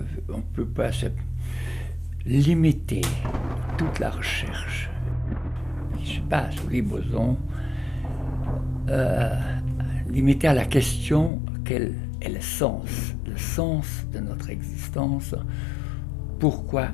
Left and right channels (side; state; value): right; drops out; at 11.3 s